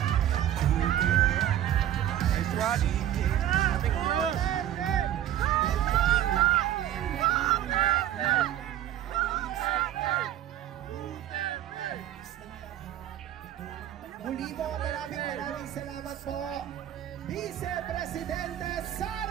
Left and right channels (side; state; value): left; quieter; 11.7 dB